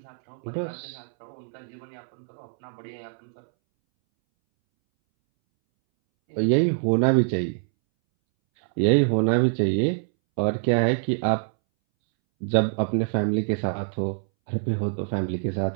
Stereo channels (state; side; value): silent; left; 62 dB below the other